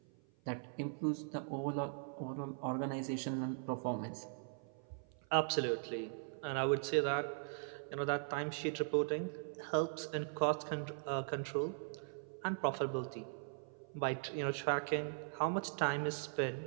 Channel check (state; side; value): silent; left; 51 dB below the other